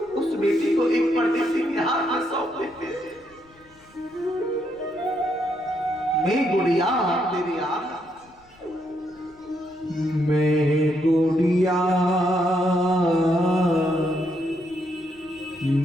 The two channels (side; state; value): left; noise; rumble, 30 dB below the sound